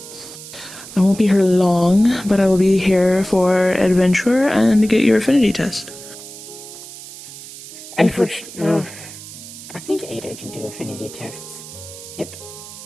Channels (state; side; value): noise; right; hiss, 15 dB below the sound